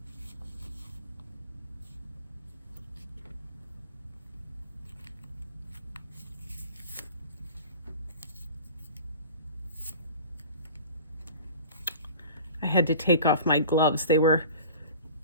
I had to take off my gloves. They were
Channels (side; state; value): both; inverted; correlation -0.40